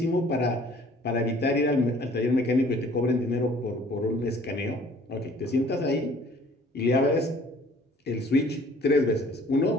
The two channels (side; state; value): both; normal; correlation 0.54